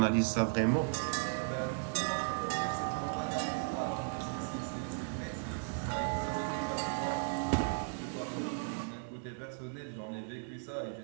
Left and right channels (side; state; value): left; silent; digital silence